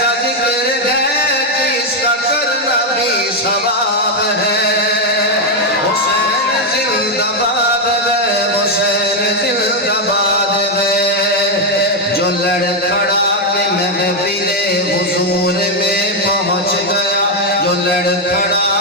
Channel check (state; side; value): normal; both; correlation 0.03